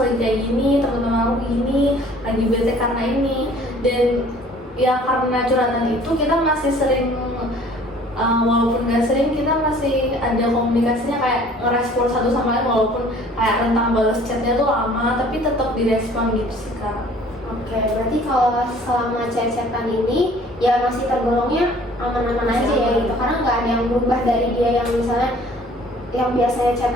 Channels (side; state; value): both; normal; correlation 0.53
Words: kayak gini, teman-teman aku gini, lagi bete karena ini. Dan ya karena curhatan itu kita masih sering walaupun gak sering, kita masih ada komunikasinya kayak ngerespon satu sama lain, walaupun kayak rentang balas chatnya tuh lama, tapi tetap direspon gitu sih Kak. Oke, berarti kalau selama chat-chatan ini ya masih tergolongnya aman-aman aja ya gitu, karena nggak ada yang berubah dari dia yang misalnya yang biasanya